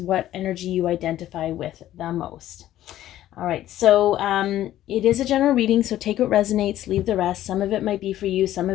what energy you identify with the most. All right, so it is a general reading, so take what resonates, leave the rest. Some of it might be for you, some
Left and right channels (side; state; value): right; quieter; 13.2 dB